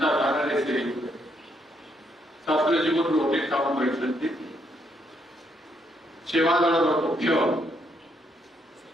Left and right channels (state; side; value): normal; both; correlation 0.74